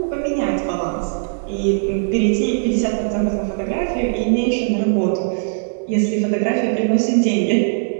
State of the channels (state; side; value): silent; left; digital silence